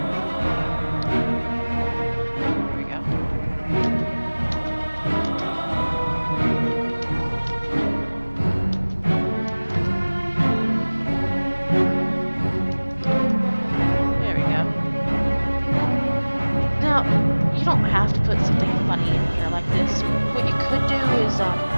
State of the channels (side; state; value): both; inverted; correlation -1.00